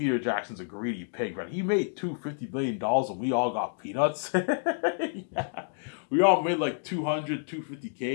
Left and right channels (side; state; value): right; silent; digital silence